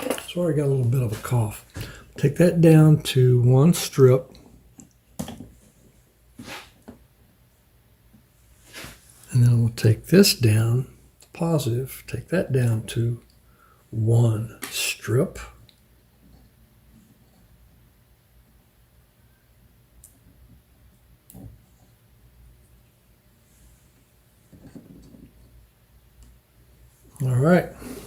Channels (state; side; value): identical; both; correlation 1.00